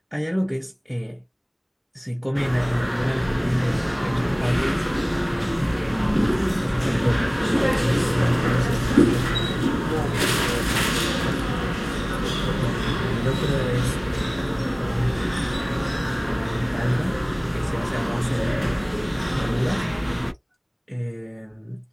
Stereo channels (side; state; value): both; identical; correlation 1.00